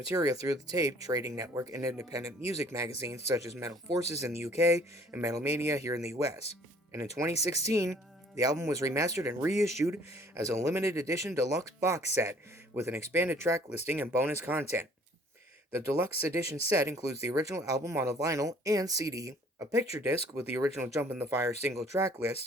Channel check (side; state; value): both; normal; correlation 0.56